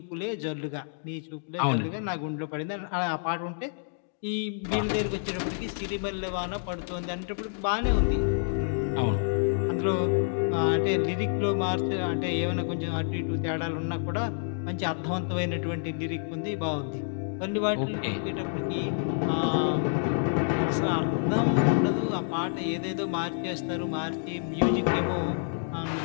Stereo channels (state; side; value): silent; right; digital silence